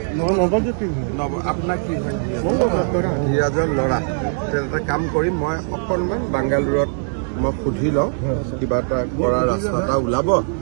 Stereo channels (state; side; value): silent; left; 59 dB below the other